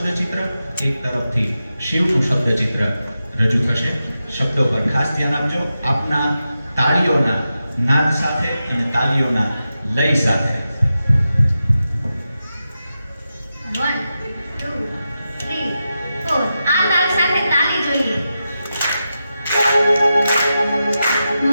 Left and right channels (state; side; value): inverted; both; correlation -0.90